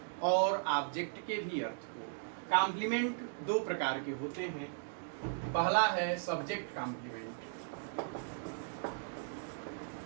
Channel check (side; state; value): left; silent; digital silence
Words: और ऑब्जेक्ट के भी अर्थ को। कॉम्प्लीमेंट दो प्रकार के होते हैं। पहला है सब्जेक्ट कॉम्प्लीमेंट।